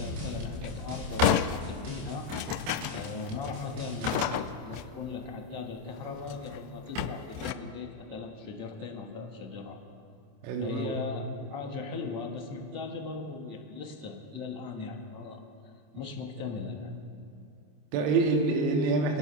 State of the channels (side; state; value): left; late; 27 ms